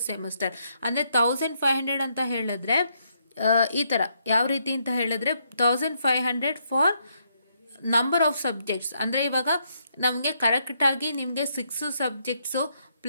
semester. ಅಂದರೆ 1,500 ಅಂತ ಹೇಳಿದ್ರೆ ಈ ಥರ ಯಾವ ರೀತಿ ಅಂತ ಹೇಳಿದ್ರೆ 1,500 ಫಾರ್ ನಂಬರ್ ಆಫ್ ಸಬ್ಜೆಕ್ಟ್ಸ್ ಅಂದರೆ ಇವಾಗ ನಮಗೆ ಕರೆಕ್ಟಾಗಿ ನಿಮಗೆ 6 ಸಬ್ಜೆಕ್ಟ್ಸು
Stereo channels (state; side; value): inverted; both; correlation -0.75